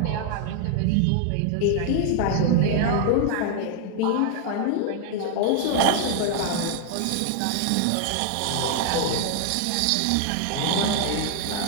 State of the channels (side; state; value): both; different; correlation 0.00